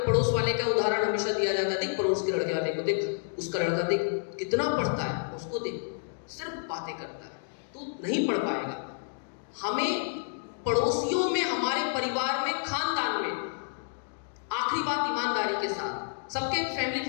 पड़ोस वाले का उदाहरण हमेशा दिया जाता है, देख पड़ोस के लड़के वाले को देख, उसका लड़का देख कितना पढ़ता है, उसको देख सिर्फ बातें करता है, तू नहीं पढ़ पाएगा। हमें पड़ोसियों में, हमारे परिवार में, खानदान में, आखिरी बात ईमानदारी के साथ, सबके फैमिली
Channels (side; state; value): right; silent; digital silence